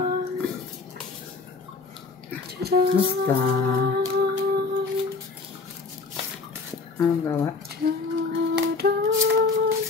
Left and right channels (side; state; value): right; quieter; 4.3 dB